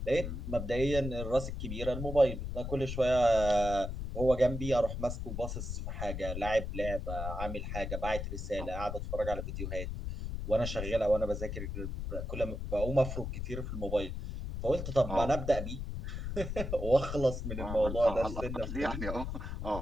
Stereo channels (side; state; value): left; noise; rumble, 5 dB below the sound